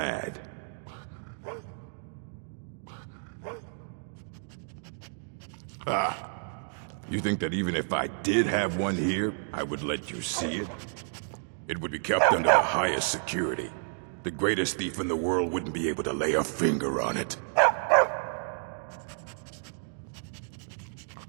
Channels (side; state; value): left; silent; digital silence